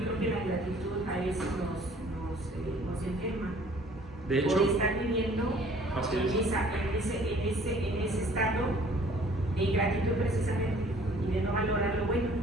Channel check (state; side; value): normal; both; correlation 0.55